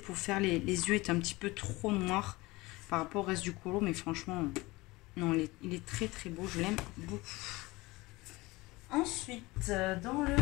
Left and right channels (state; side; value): quieter; right; 21.7 dB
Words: faire les yeux est un petit peu trop noir par rapport au reste du colo. Mais franchement, non, il est très très beau. Je l'aime beaucoup. Ensuite, dans le